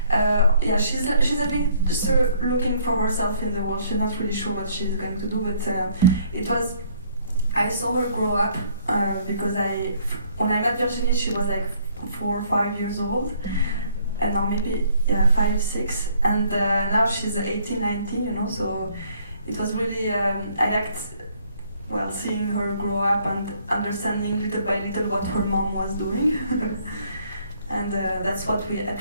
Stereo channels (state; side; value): inverted; both; correlation -0.63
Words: she's a bit looking for herself in the world. She's not really sure what she's going to do, but I saw her grow up because when I met Virginie, she was like 4 or 5 years old, and now maybe 5, 6, and now she's 18, 19, so it was really, I liked seeing her grow up and understanding little by little what her mom was doing. And that's what I